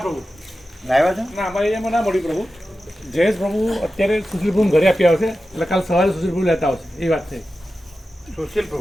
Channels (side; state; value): both; normal; correlation 0.93